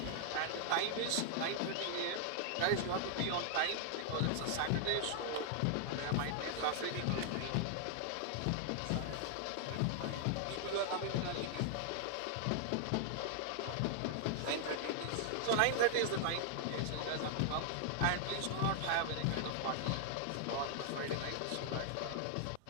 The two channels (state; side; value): different; both; correlation -0.01